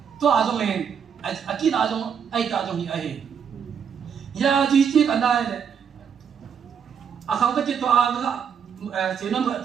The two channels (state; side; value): quieter; left; 7.3 dB